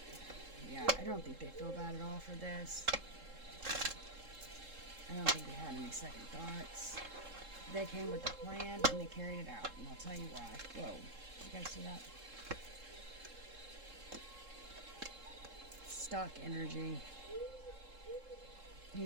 Yeah, I don't think they feel bad at all for this. I don't think they had any second thoughts. They came with a plan and they carried it out, and I'll tell you why. Whoa, you guys see that? Stock energy. Here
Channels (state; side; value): late; left; 3.7 ms